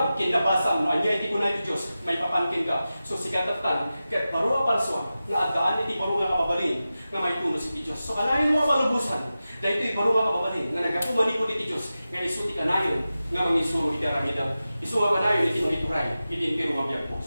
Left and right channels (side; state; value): both; inverted; correlation -0.94